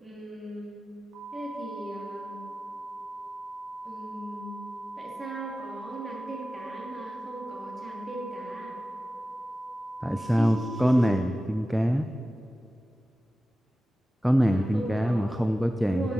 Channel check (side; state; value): both; normal; correlation 0.95